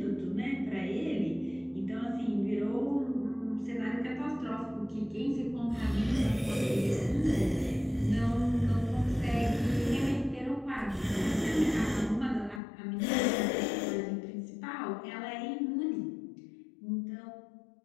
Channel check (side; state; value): right; drops out; at 12.6 s